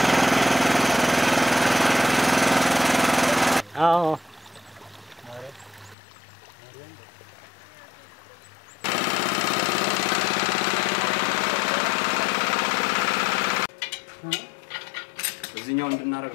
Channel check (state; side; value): drops out; right; at 6.0 s